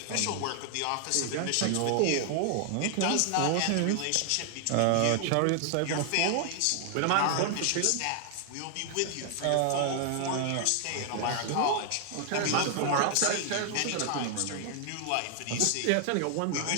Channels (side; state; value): both; different; correlation 0.00